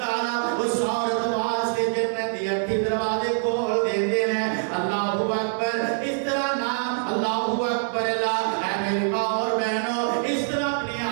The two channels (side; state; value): left; silent; digital silence